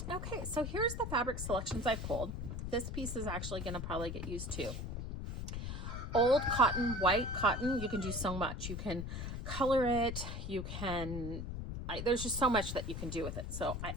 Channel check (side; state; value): left; noise; rumble, 5 dB below the sound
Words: Okay, so here's the fabric selections I pulled. This piece is actually going to probably get used too. Old cotton, white cotton, you can do so much. You can color it, you can, there's just so much that you can do with it. So I